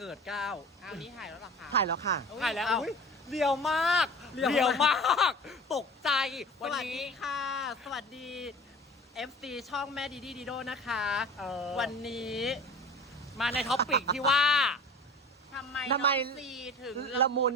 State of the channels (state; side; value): normal; both; correlation 0.39